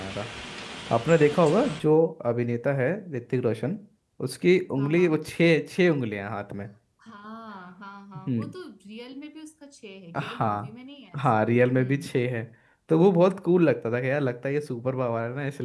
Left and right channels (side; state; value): both; identical; correlation 1.00